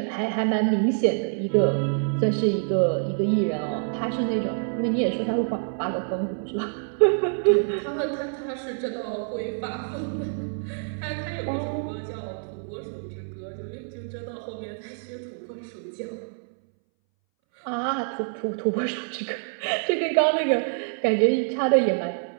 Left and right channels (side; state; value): left; silent; 61 dB below the other